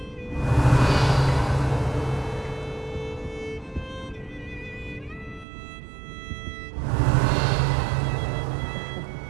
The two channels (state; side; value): drops out; left; at 5.5 s